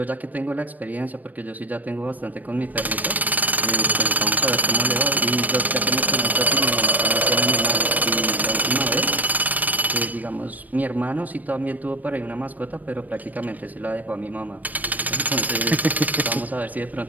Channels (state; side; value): late; left; 0.081 ms